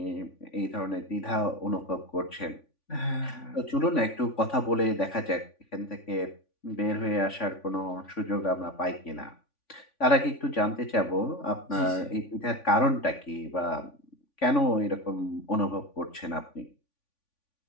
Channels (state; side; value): late; right; 3.5 ms